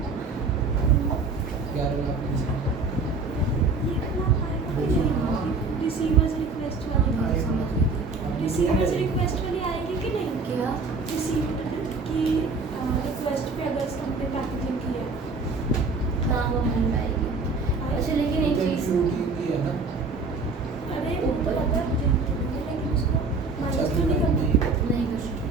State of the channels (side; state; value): left; quieter; 4.0 dB